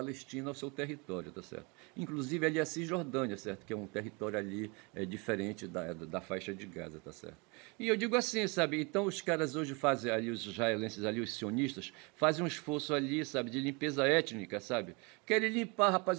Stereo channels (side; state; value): left; quieter; 29.5 dB